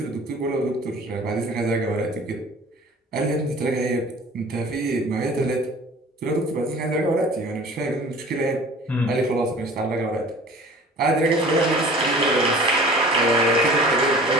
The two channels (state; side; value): normal; both; correlation 0.45